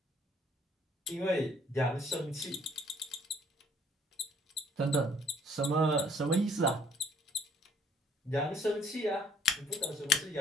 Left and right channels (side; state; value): both; normal; correlation 0.61